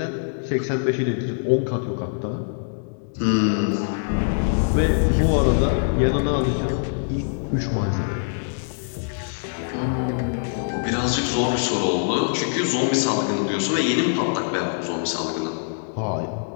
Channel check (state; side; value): silent; right; digital silence